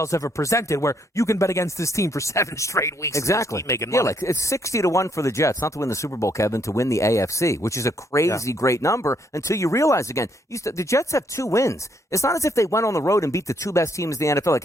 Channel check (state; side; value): normal; both; correlation 0.72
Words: ever presented where you can bet against this team for 7 straight weeks. Exactly. And making money. Yeah, like it's 60-1 for the Jets, not to win the Super Bowl, Kevin, to win the AFC, which is a crazy great number until you realize again, the Jets have 2 wins. It's not as if they went on the road and beat the 2 best teams in the NFL. Like,